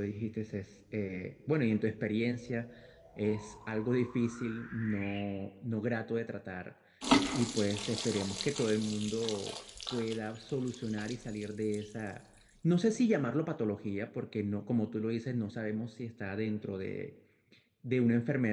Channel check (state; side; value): identical; both; correlation 1.00